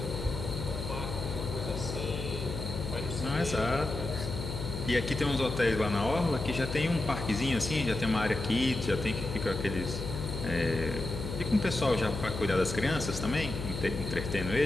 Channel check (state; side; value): noise; left; hum, 6 dB below the sound